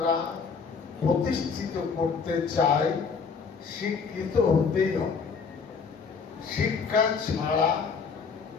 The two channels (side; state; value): right; quieter; 5.5 dB